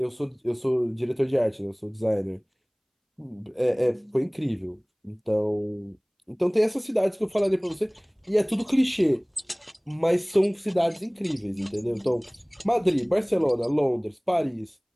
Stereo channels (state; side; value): identical; both; correlation 1.00